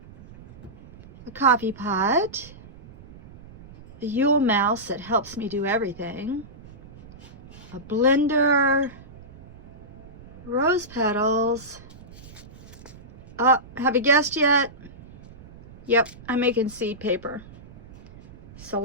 a coffee pot, a Yule mouse that helps me do everything, a blender, rose petals. Have you guessed yet? Yep, I'm making seed paper. So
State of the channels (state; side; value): noise; right; rumble, 20 dB below the sound